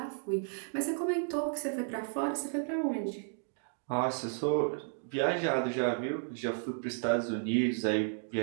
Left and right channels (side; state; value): left; silent; digital silence